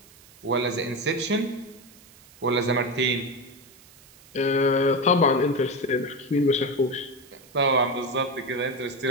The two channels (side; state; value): right; noise; hiss, 25 dB below the sound